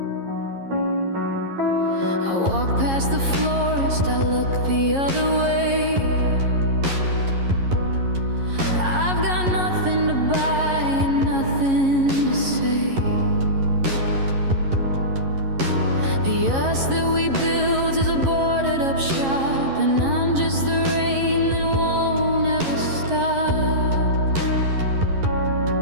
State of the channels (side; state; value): left; late; 11 ms